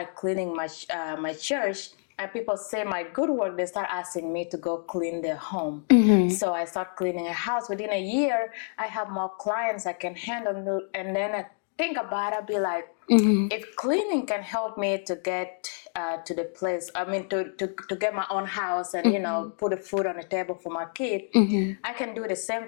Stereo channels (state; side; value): silent; right; 59 dB below the other